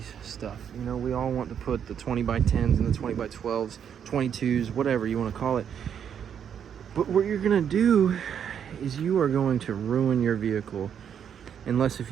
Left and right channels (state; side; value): quieter; left; 8.3 dB